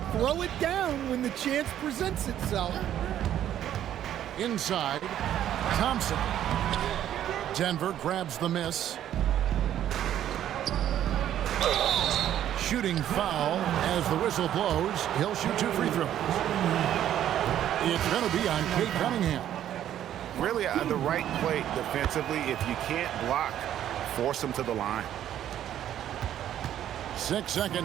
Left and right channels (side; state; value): left; quieter; 11.2 dB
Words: throw it down when the chance presents itself. Inside, Thompson. Denver grabs the miss. Shooting foul as the whistle blows. He'll shoot 2 free throws. It's going to be on Cade Cunningham. Really the right play defensively. If you can't block, force him to the line. 6